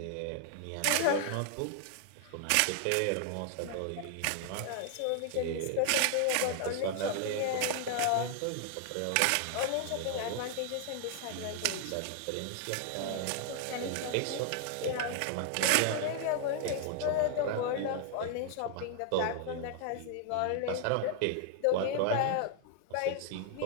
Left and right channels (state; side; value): different; both; correlation 0.00